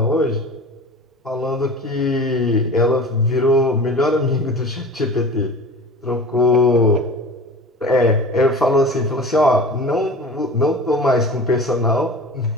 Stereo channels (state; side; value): normal; both; correlation 0.37